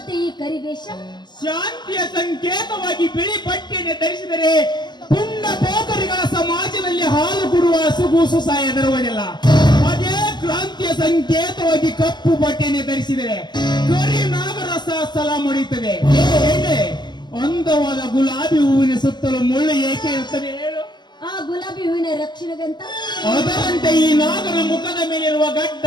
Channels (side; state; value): right; late; 0.21 ms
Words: ಈ ಕರಿವೇಷ ಶಾಂತಿಯ ಸಂಕೇತವಾಗಿ ಬಿಳಿ ಪಟ್ಟಿಯನ್ನು ಧರಿಸಿದರೆ ಪುಣ್ಯ ಪೋಕರಿಗಳ ಸಮಾಜದಲ್ಲಿ ಹಾಲು ಕೊಡುವ ಹಸುಗೂಸು ಸಹ ಎದರುವುದಿಲ್ಲ. ಅದೇ ಕ್ರಾಂತಿಯ ಸಂಕೇತವಾಗಿ ಕಪ್ಪು ಬಟ್ಟೆಯನ್ನು ಧರಿಸಿದರೆ ಕರಿ ನಾಗರಸ ಸಲ ಮುಡಿಯುತ್ತದೆ. ಹೇಗೆ ಅಂದವಾದ ಗುಲಾಬಿ ಹೂವಿನ ಸುತ್ತಲೂ ಮುಳ್ಳು ಏಕೆ ಇರುತ್ತದೆ ಹೇಳು? ಆ ಗುಲಾಬಿ ಹೂವಿನ ರಕ್ಷಣೆಗಂತ ಅದರಂತೆ ಈ ನಾಗನ ಮುಖದ ಮೇಲಿರುವ ಗಡ್ಡ